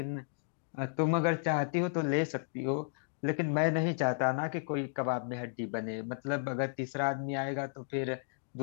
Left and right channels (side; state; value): right; silent; digital silence